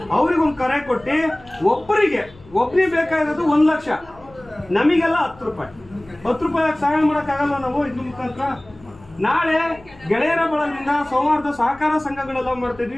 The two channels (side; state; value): left; noise; hum, 24 dB below the sound